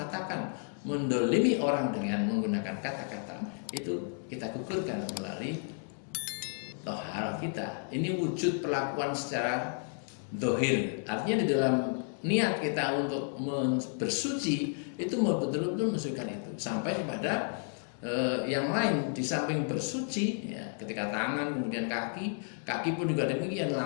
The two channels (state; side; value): silent; right; 56 dB below the other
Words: mendolimi orang dengan menggunakan kata-kata, itu kita gugurkan melalui tohar kita. Ini wujud perlakuan secara dohir, artinya di dalam niat kita untuk bersuci itu betul-betul mensucikan itu sampai kepada yang lain. Di samping bersuci, ya, ketika tangan kemudian kaki pun juga demikian.